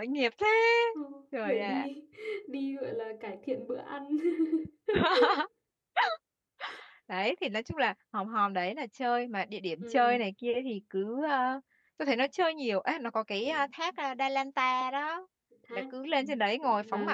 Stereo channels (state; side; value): identical; both; correlation 1.00